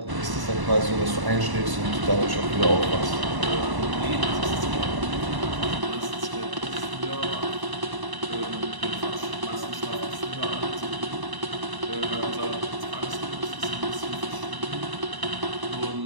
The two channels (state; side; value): late; left; 1.0 ms